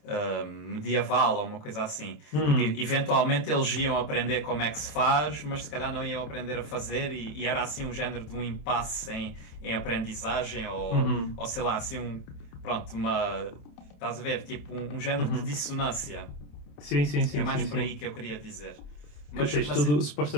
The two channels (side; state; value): right; late; 27 ms